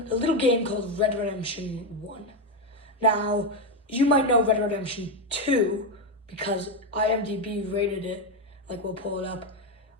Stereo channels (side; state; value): both; normal; correlation 0.09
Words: little game called Red Redemption 1. Now, you might know Red Redemption 2 because IMDb rated it, we'll pull it up,